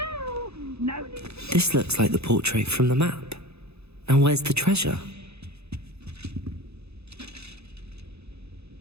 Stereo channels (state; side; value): late; left; 0.79 ms